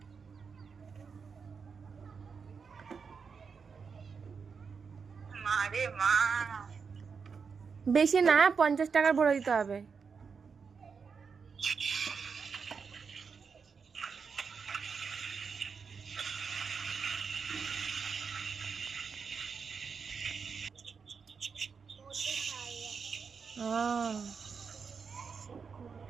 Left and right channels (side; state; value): left; quieter; 5.7 dB